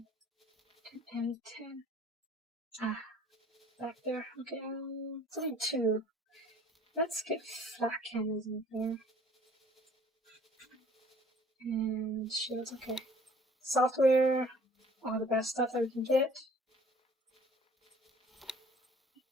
and M10. Back there. Okay, it's only 2. Let's get flat cannons in here. And shields, okay. Software, all the best stuff that we can get.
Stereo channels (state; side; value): normal; both; correlation 0.53